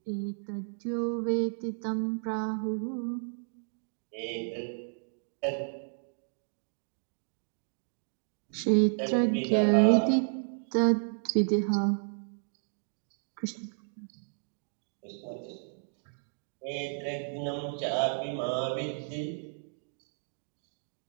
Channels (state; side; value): silent; left; digital silence